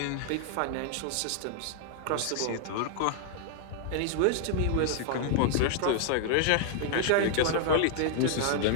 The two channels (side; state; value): both; different; correlation 0.00